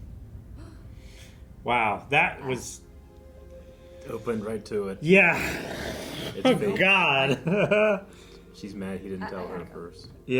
Wow, that was. Opened right to it. Yeah. It's Oh, fake. God. She's mad he didn't tell her at first.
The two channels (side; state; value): both; identical; correlation 1.00